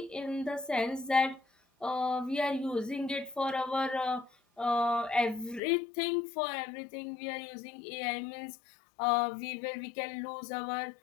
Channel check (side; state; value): right; drops out; at 5.6 s